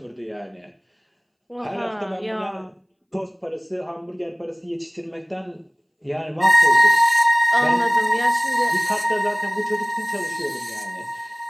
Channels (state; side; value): identical; both; correlation 1.00